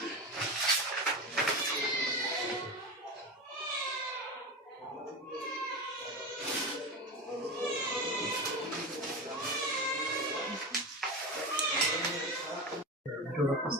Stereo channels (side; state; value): both; normal; correlation 0.22